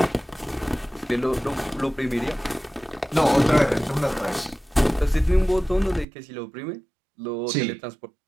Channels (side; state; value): left; drops out; at 6.1 s